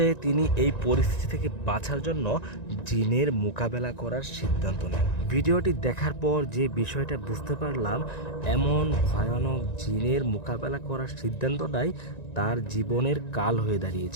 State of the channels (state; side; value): late; right; 1.9 ms